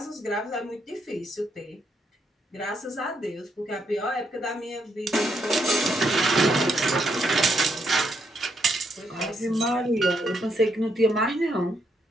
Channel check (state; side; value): normal; both; correlation 0.77